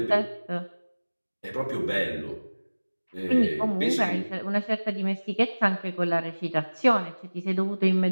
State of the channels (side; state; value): both; inverted; correlation -1.00